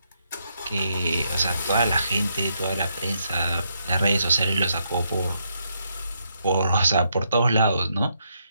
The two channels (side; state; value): both; inverted; correlation -0.78